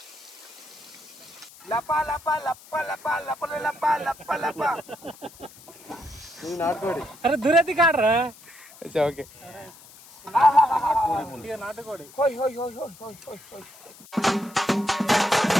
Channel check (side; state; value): left; noise; hiss, 21 dB below the sound